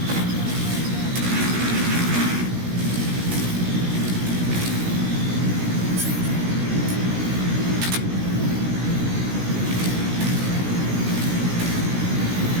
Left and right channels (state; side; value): late; left; 17 ms